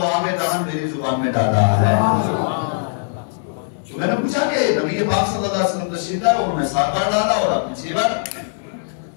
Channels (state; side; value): silent; right; digital silence